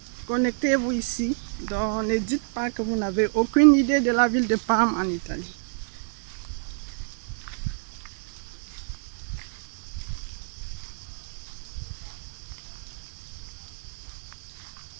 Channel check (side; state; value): left; silent; digital silence